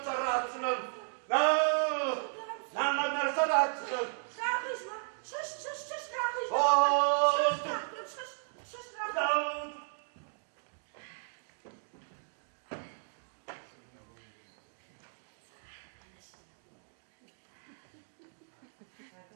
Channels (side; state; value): left; silent; digital silence